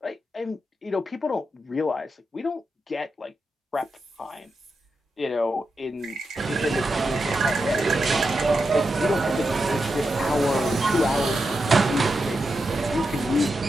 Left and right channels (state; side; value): normal; both; correlation 0.87